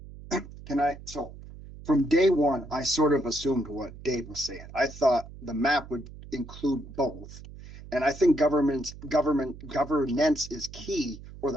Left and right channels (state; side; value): noise; right; hum, 15 dB below the sound